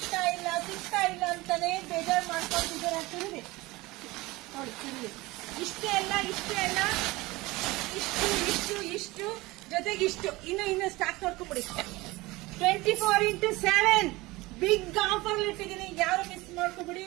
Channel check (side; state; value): left; quieter; 21.1 dB